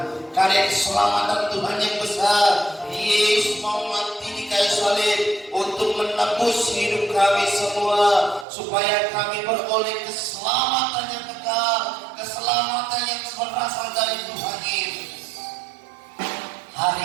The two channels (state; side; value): drops out; left; at 8.5 s